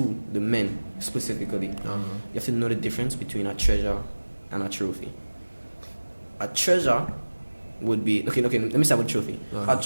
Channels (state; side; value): inverted; both; correlation -1.00